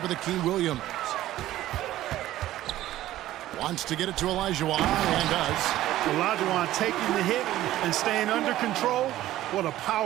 of the key, Williams. Wants to get it to Olajuwon, and does. Olajuwon taking the hit and staying under control. What a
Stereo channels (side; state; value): left; quieter; 14.5 dB